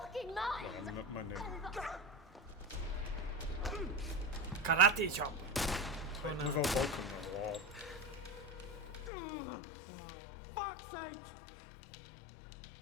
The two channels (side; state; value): right; drops out; at 9.1 s